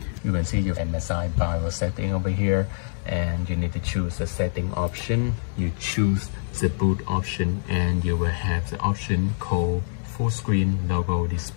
You can see your MSI BIOS setting over here, and you need to choose the setting option. You choose the boot option, and you will have the option called full screen logo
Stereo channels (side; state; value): right; silent; 62 dB below the other